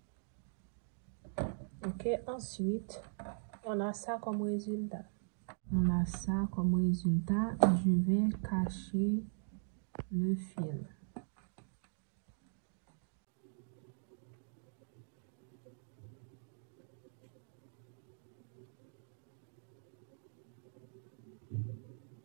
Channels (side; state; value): left; silent; digital silence